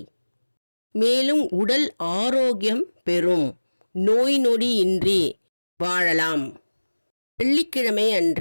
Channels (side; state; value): both; inverted; correlation -1.00